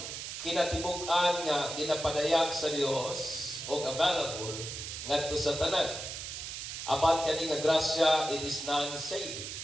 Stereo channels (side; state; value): right; noise; hiss, 7 dB below the sound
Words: kinatibuk-an nga ginapadayag sa Dios o available ngadto sa tanan. Apan kani nga grasya, it is non-saving.